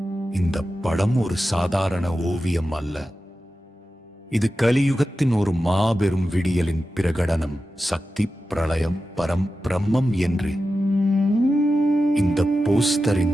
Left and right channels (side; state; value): both; normal; correlation 0.92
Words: இந்த படம் ஒரு சாதாரண ஓவியம் அல்ல. இது கலியுகத்தின் ஒரு மாபெரும் விடியலின் பிரகடனம். சக்தி, பிரளயம், பிரம்மம் என்று இந்த